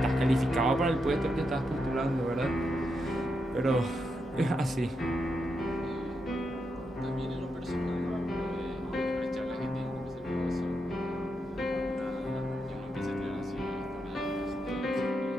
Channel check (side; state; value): both; normal; correlation 0.84